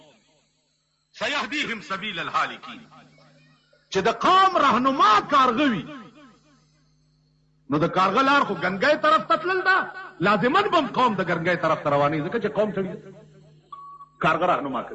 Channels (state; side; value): identical; both; correlation 1.00